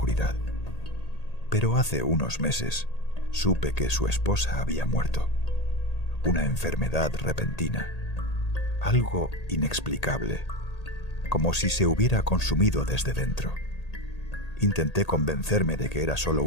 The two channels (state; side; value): late; right; 1.8 ms